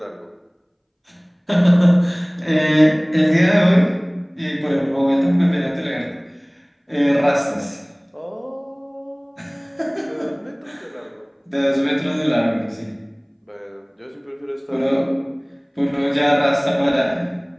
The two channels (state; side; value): identical; both; correlation 1.00